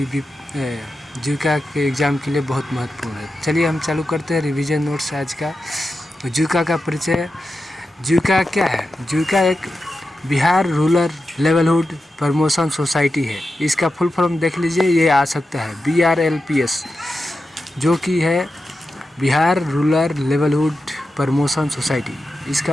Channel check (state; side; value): normal; both; correlation 0.90